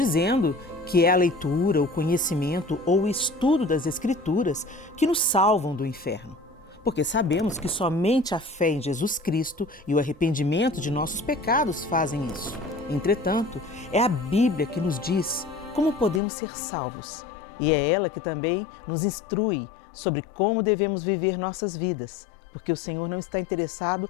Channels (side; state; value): right; drops out; at 16.2 s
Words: que é a leitura, o conhecimento ou o estudo das Escrituras que nos salvam do inferno, porque sabemos que somente a fé em Jesus Cristo e o arrependimento de nossos pecados fazem isso. Entretanto, é a Bíblia que nos diz como podemos ser salvos. E é ela que também nos instrui sobre como devemos viver nossas vidas, porque o Senhor não está interessado